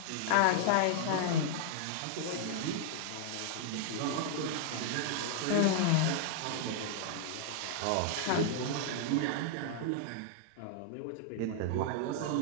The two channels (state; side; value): different; both; correlation -0.01